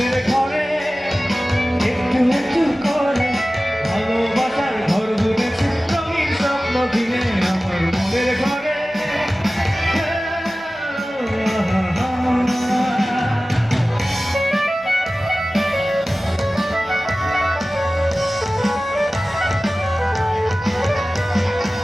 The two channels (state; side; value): normal; both; correlation 0.96